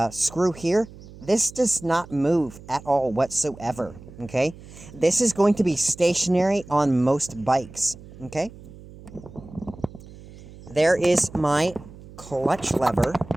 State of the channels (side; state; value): right; noise; hum, 18 dB below the sound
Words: screw here, this does not move at all whatsoever, okay? This is going to be stationary on most bikes, okay? There is my clutch lever